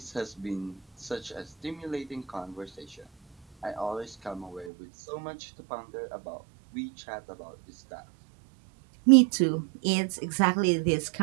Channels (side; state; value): left; drops out; at 4.7 s